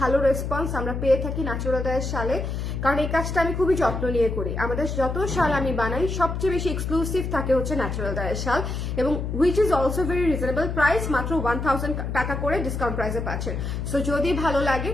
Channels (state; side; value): noise; left; hum, 3 dB below the sound